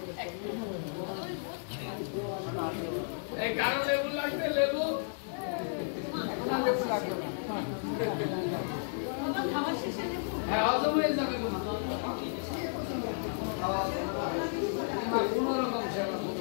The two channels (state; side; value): silent; right; digital silence